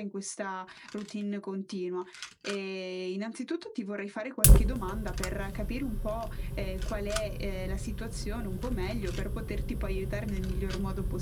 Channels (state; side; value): identical; both; correlation 1.00